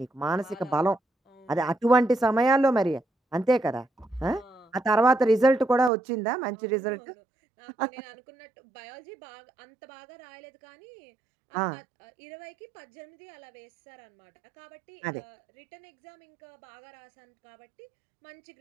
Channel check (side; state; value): left; drops out; at 5.9 s